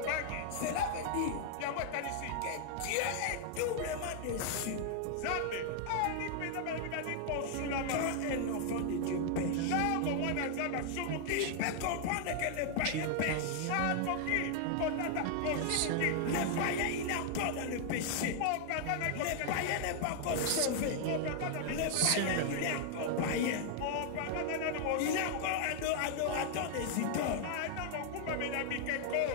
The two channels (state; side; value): different; both; correlation 0.00